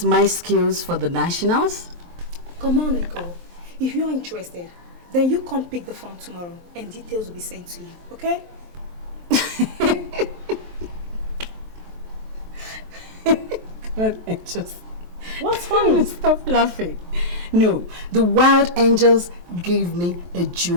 my skills for the nationals? Come on, Nicole. If you're interested, then you come pick the form tomorrow and details will be sent to you, okay? God, I just... What's funny? Stop laughing. No, the Wild Angels gave me a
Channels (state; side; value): late; left; 23 ms